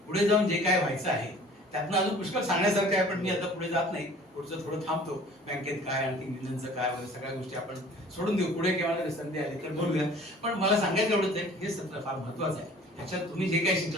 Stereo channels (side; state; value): both; normal; correlation 0.49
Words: पुढे जाऊन जे काय व्हायचं आहे त्यातनं अजून पुष्कळ सांगण्यासारखं आहे, पण मी आता पुढे जात नाही. पुढचं थोडं थांबतो. बँकेत काय, आणखी मिलनचं काय वगैरे सगळ्या गोष्टी आपण सोडून देऊ. पुढे केव्हा संधी आली तर बोलूया. पण मला सांगायचं एवढंच आहे, हे सत्र फार महत्वाचं आहे. त्याच्यात तुम्ही जे काही